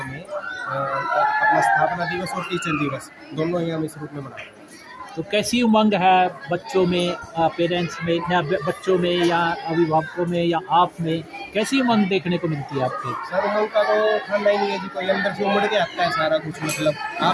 में अपना स्थापना दिवस और टीचर दिवस दोनों ही हम इस रूप में मना रहे हैं। तो कैसी उमंग है बच्चों में, पेरेंट्स में, या बच्चों में या अभिभावकों में या आप में, कैसी उमंग देखने को मिलती है आपके? सर उमंग का तो ठंडा ही नहीं है जी, कोई अंदर से उमड़ के आता है सारा कुछ। मतलब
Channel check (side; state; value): both; identical; correlation 1.00